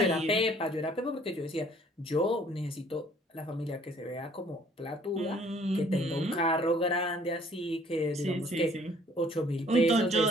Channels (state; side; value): normal; both; correlation 0.58